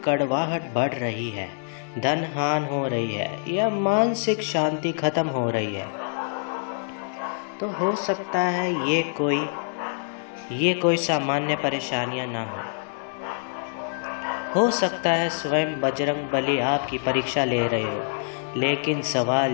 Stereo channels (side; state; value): right; silent; 61 dB below the other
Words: कड़वाहट बढ़ रही है, धन हानि हो रही है या मानसिक शांति खत्म हो रही है, तो हो सकता है ये कोई सामान्य परेशानियां ना हो सकता है स्वयं बजरंग बली आपकी परीक्षा ले रहे हो। लेकिन सवाल